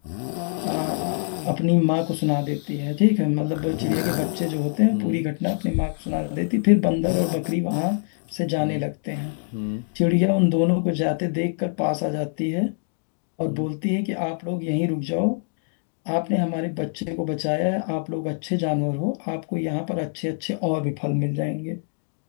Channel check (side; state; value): right; silent; digital silence